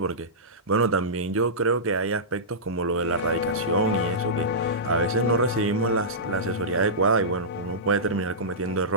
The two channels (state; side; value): normal; both; correlation -0.17